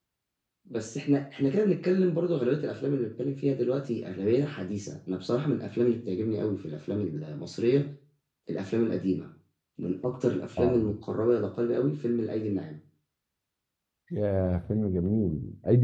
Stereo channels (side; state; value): both; identical; correlation 1.00